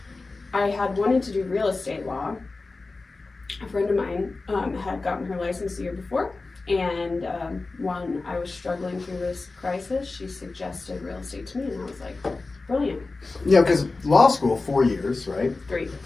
I had wanted to do real estate law. A friend of mine had gotten her license the year before, and when I was struggling through this crisis, she suggested real estate to me, and I was like, brilliant. Yeah, because law school, 4 years, right? 3.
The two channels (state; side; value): quieter; right; 3.6 dB